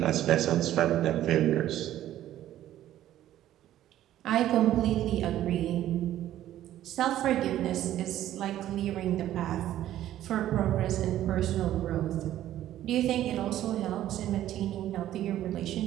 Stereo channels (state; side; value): quieter; left; 12.8 dB